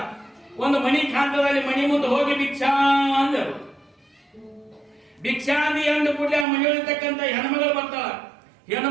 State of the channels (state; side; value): drops out; left; at 6.5 s